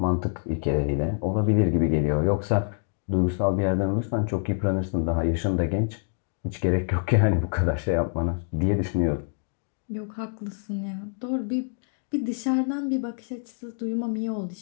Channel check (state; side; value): silent; right; 61 dB below the other